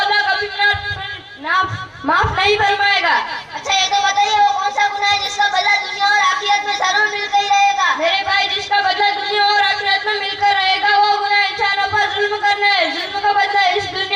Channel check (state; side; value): identical; both; correlation 1.00